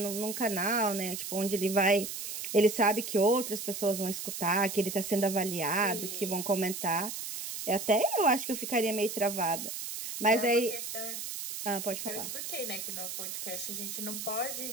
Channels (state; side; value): noise; right; hiss, 6 dB below the sound